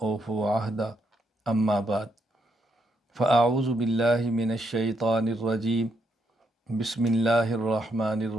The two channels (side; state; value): both; normal; correlation 0.77